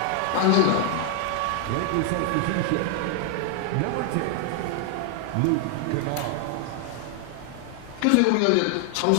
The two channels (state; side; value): different; both; correlation 0.00